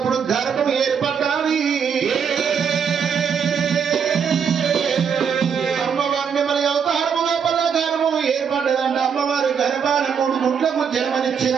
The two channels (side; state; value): left; quieter; 6.9 dB